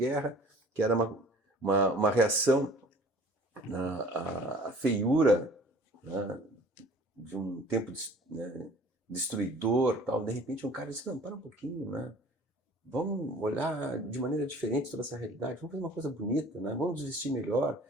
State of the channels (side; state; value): both; normal; correlation 0.49